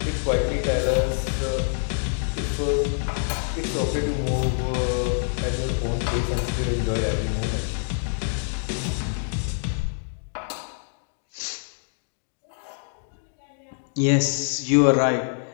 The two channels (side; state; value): right; silent; digital silence